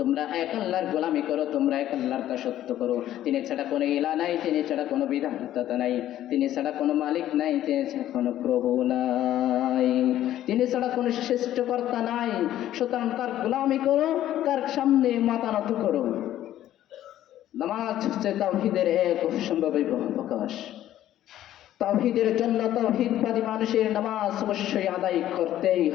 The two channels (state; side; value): quieter; right; 12.7 dB